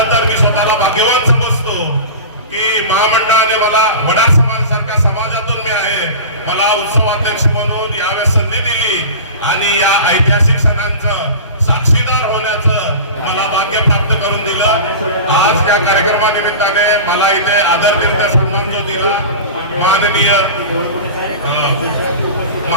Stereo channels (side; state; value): both; inverted; correlation -0.32